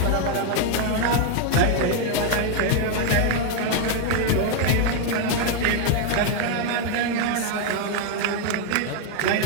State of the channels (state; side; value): different; both; correlation 0.00